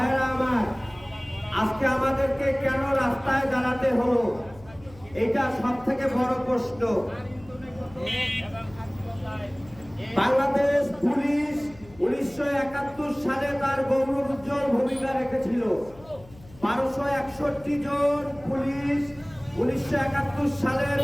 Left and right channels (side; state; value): left; noise; hum, 22 dB below the sound